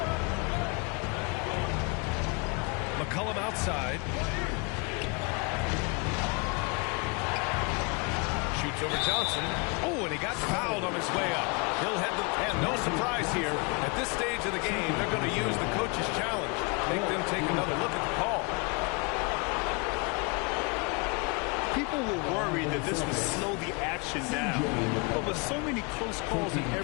McCollum outside. Shoots over Johnson. Oh, and he got fouled on his way up. He'll head the... And no surprise here. At this stage of the game, they're going to use the coach's challenge. Make them take another look at the call. People were worried that this would slow the action down. But with so many close calls in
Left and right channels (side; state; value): right; quieter; 31.3 dB